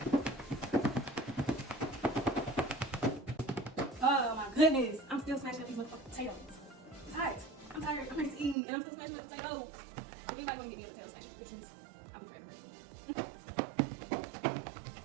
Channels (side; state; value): left; drops out; at 8.6 s